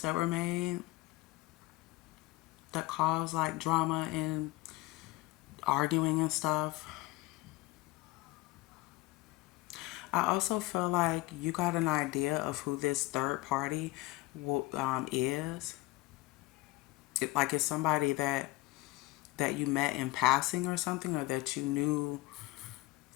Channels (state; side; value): quieter; right; 20.6 dB